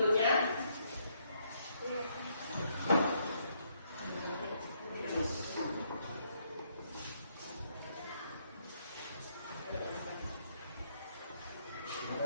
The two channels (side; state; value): both; inverted; correlation -0.73